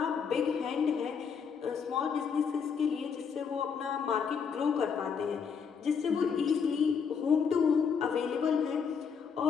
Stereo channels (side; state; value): right; quieter; 6.4 dB